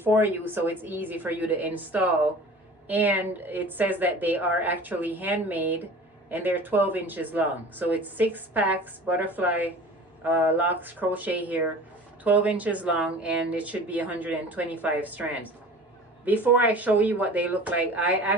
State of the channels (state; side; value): normal; both; correlation 0.41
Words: you, so it's easy for you to install. And it says that they are actually handmade, and they're 12 inches long. So it's 6 packs, butterfly Locs Crochet here, 12 inches long, and it should be 125 strands. Before I show you what they look like, I